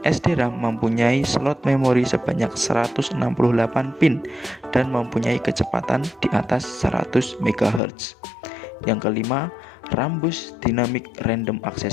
SDRAM mempunyai slot memori sebanyak 168 pin dan mempunyai kecepatan di atas 100 MHz. Yang kelima, Rambus Dynamic Random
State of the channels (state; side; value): drops out; right; at 7.8 s